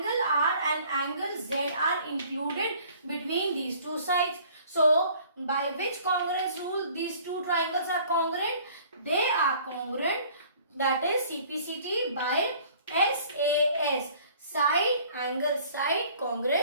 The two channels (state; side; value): inverted; both; correlation -0.53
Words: R and angle Z are included between these two sides. So by which congruence rule these two triangles are congruent? They are congruent, that is CPCT by SAS, side, angle, side